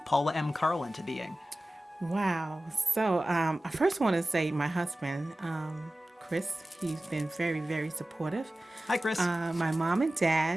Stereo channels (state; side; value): normal; both; correlation 0.96